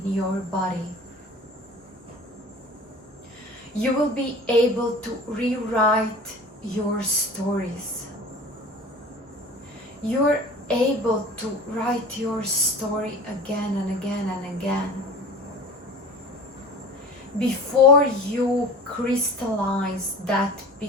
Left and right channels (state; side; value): normal; both; correlation 0.39